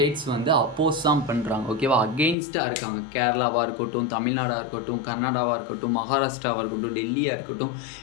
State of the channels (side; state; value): right; drops out; at 2.4 s